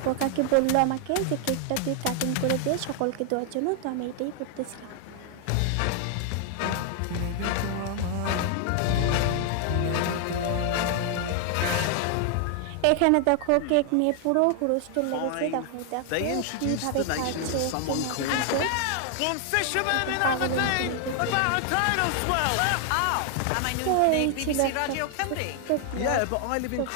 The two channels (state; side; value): different; both; correlation 0.00